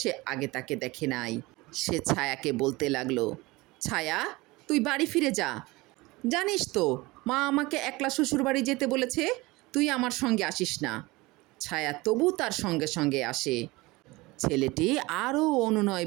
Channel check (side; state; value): left; quieter; 21.9 dB